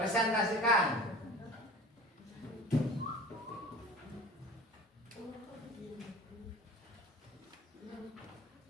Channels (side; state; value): both; normal; correlation 0.40